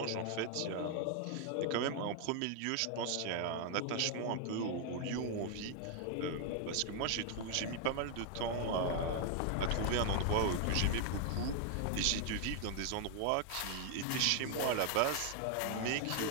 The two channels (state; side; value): different; both; correlation 0.00